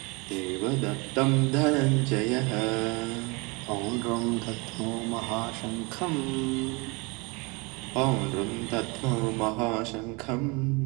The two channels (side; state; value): left; quieter; 28.5 dB